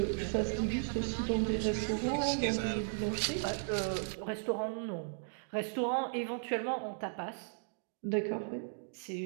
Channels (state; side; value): silent; left; digital silence